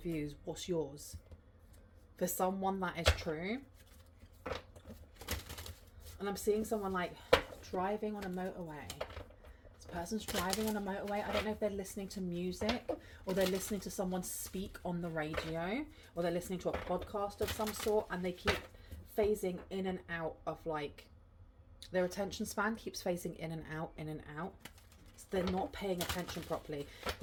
views. What's yours? For someone, that is true. And I'm seeing someone like driving on a motorway. This person's driving on a motorway. I don't know if they're listening to music, or they're listening to someone speak on the radio, or they're listening to a podcast of some sort, and they keep phasing in and out of, like, their attention span keeps phasing in and out, in and out. So they're not paying attention properly.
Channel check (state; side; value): identical; both; correlation 1.00